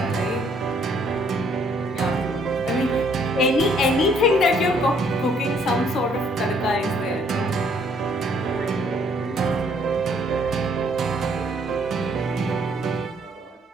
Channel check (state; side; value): normal; both; correlation 0.65